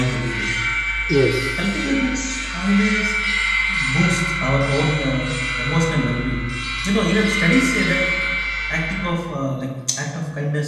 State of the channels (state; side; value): identical; both; correlation 1.00